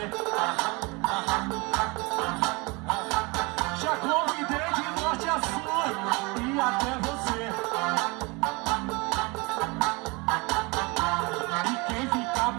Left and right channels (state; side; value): quieter; left; 26.9 dB